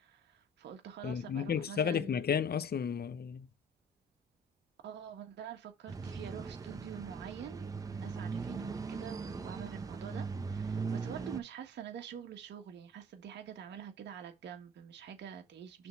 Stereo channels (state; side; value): normal; both; correlation 0.46